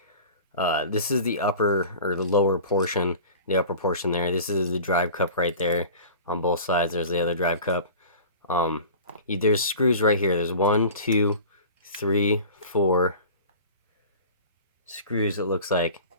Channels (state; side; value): inverted; both; correlation -0.39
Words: this is the upper, or the lower portion, the upper portion there. This is the drive cup right there on both sides. There's the other drive cup. There's screws right here. There's 1, 2, 3, 4 screws, it looks like.